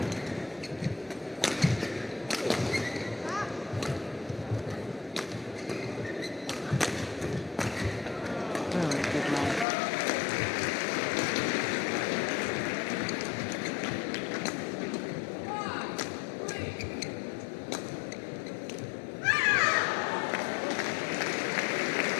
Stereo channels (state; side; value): drops out; right; at 9.7 s